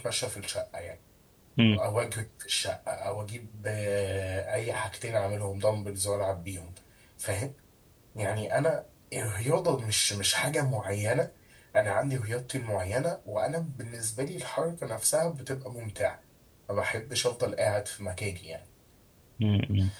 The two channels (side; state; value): both; identical; correlation 1.00